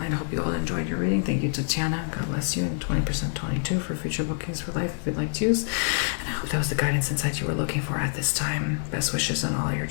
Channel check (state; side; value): silent; right; digital silence